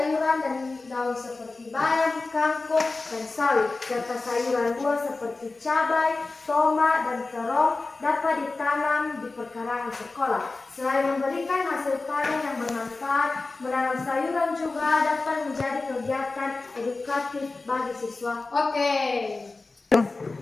dan daun seperti bayam, kangkung, dan sawi, serta sayuran buah seperti cabai, tomat, dan terong dapat ditanam di perkarangan sekolah. Selain memberikan hasil panen yang bermanfaat, menanam sayuran juga dapat menjadi kegiatan edukatif bagi siswa. Oke.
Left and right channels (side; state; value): right; quieter; 3.6 dB